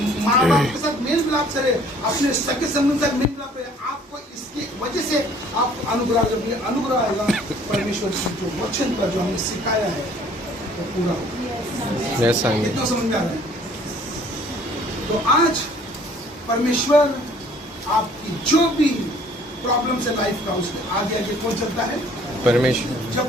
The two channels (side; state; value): both; normal; correlation 0.56